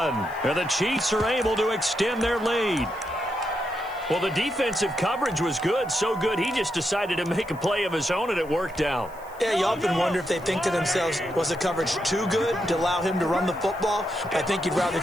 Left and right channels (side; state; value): left; noise; hiss, 26 dB below the sound